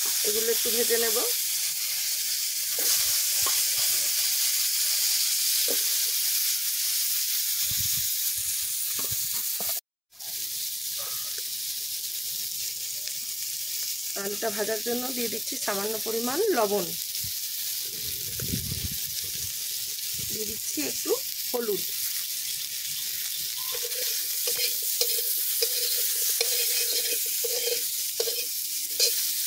এগুলো একটু ভেজে নেব। আলুটা ভাজার জন্য দিয়ে দিচ্ছি সামান্য পরিমাণ লবণ, দিয়ে দিচ্ছি একটু হলুদ,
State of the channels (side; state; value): both; identical; correlation 1.00